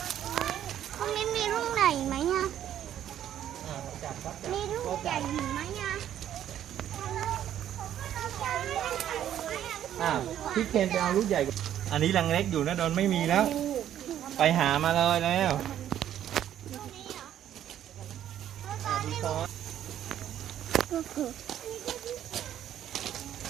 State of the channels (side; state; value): left; quieter; 10.9 dB